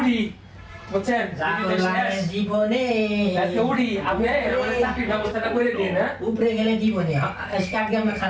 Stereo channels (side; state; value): both; identical; correlation 1.00